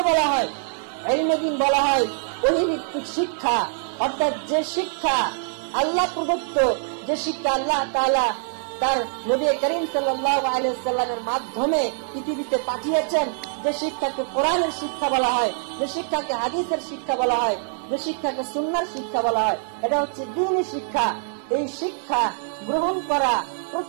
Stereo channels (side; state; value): left; silent; digital silence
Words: বলা হয়? ইলমে দ্বীন বলা হয় ওহী ভিত্তিক শিক্ষা, অর্থাৎ যে শিক্ষা আল্লাহ প্রদত্ত, যে শিক্ষা আল্লাহ তাআলা তার নবী করিম সাল্লাল্লাহু আলাইহি ওয়াসাল্লামের মাধ্যমে পৃথিবীতে পাঠিয়েছেন, যে শিক্ষাকে কোরআনের শিক্ষা বলা হয়, যে শিক্ষাকে হাদিসের শিক্ষা বলা হয়, যে শিক্ষাকে সুন্নাহর শিক্ষা বলা হয়, এটা হচ্ছে দ্বীনি শিক্ষা। এই শিক্ষা গ্রহণ করা